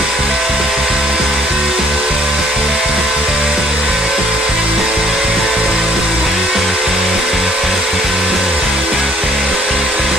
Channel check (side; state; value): both; normal; correlation 0.61